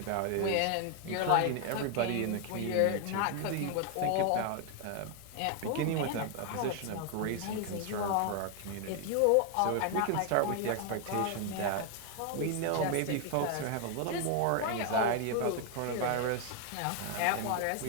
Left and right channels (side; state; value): both; different; correlation 0.00